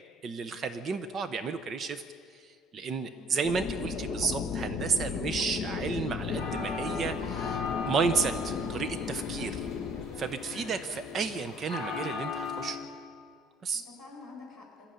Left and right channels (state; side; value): normal; both; correlation 0.58